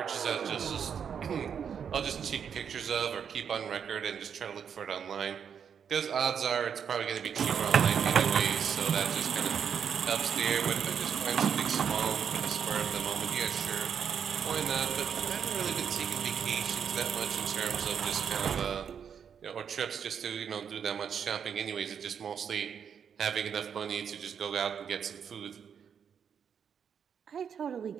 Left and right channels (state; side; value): quieter; left; 7.5 dB